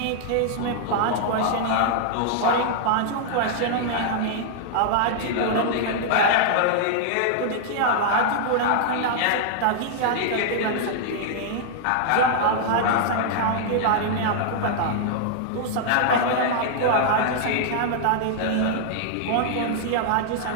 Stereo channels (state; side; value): different; both; correlation -0.01